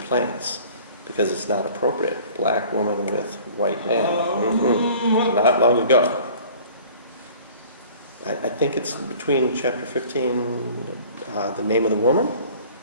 because it's not appropriate. Black woman with white man. Not long ago. I think it's between chapter 15, the name of the woman.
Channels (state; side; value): inverted; both; correlation -0.48